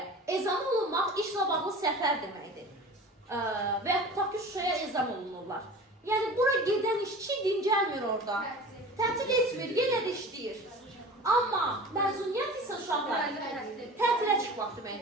ezam olunmaq işlə bağlı səfər deməkdir. Və ya tutaq ki, Şuşaya ezam olunurlar. Yəni, bura gedən işçi dincəlmir orada. Tətil etmir, yenə də işləyir. Amma məzuniyyət isə uşaqlar tətilə çıxmaq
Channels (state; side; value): normal; both; correlation 0.38